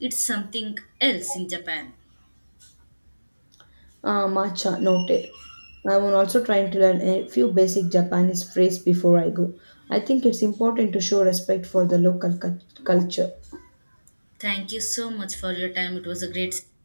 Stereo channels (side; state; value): both; inverted; correlation -1.00